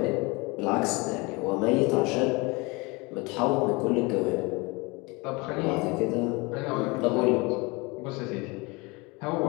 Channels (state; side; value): quieter; right; 26.4 dB